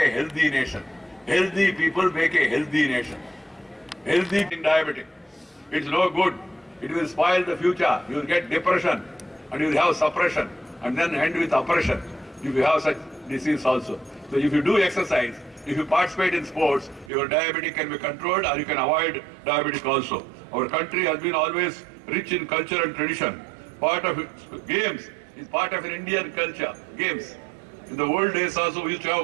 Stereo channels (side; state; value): left; drops out; at 17.1 s